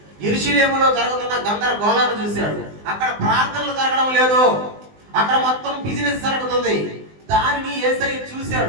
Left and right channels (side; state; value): left; late; 19 ms